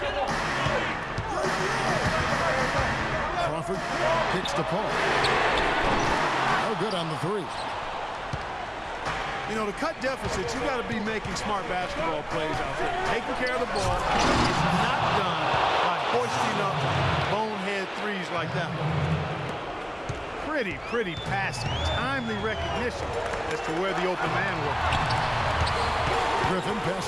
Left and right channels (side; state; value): both; identical; correlation 1.00